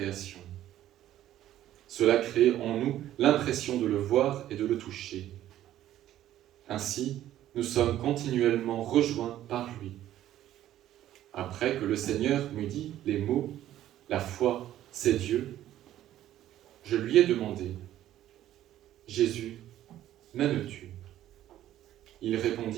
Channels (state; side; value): quieter; left; 12.8 dB